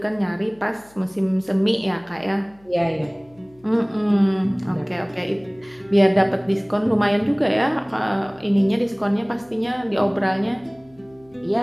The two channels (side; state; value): left; noise; hum, 30 dB below the sound